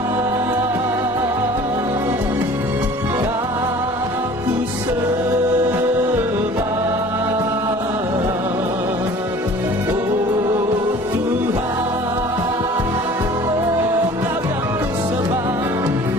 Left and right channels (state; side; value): normal; both; correlation 0.47